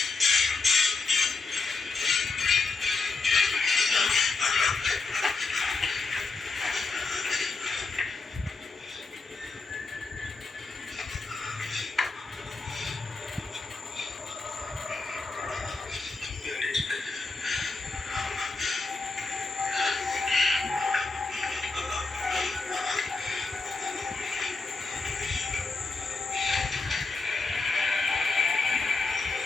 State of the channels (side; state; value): right; quieter; 4.0 dB